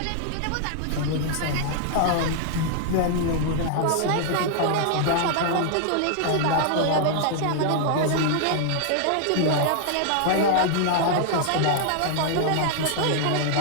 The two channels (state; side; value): different; both; correlation -0.01